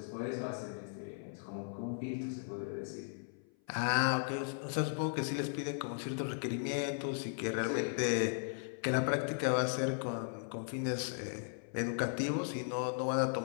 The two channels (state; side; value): silent; right; 53 dB below the other